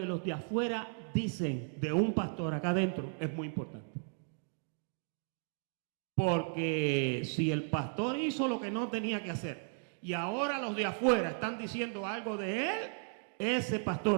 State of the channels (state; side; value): silent; left; 54 dB below the other